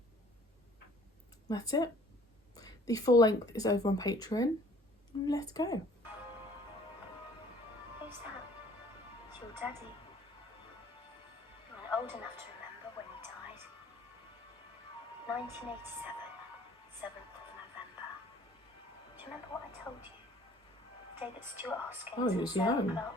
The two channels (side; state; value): both; normal; correlation 0.54